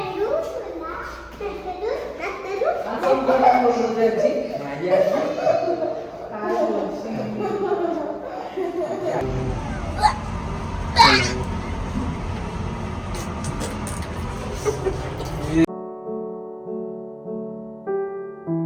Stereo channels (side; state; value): both; identical; correlation 1.00